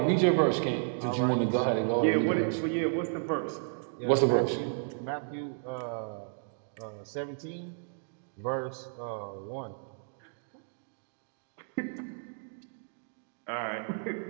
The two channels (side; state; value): left; silent; digital silence